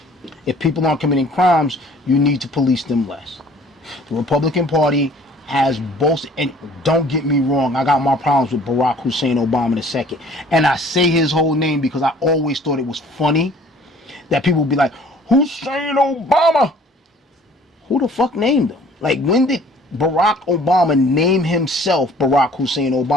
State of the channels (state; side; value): normal; both; correlation 0.53